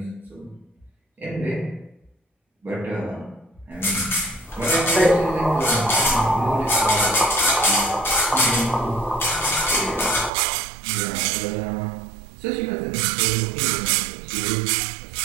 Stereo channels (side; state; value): left; drops out; at 10.3 s